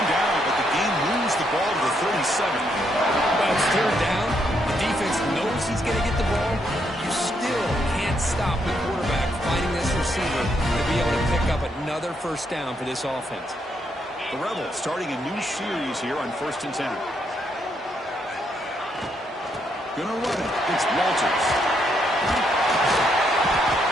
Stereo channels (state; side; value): normal; both; correlation 0.76